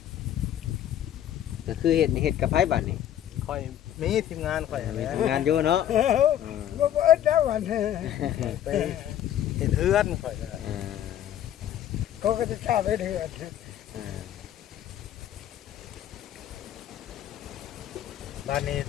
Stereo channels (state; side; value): quieter; right; 11.2 dB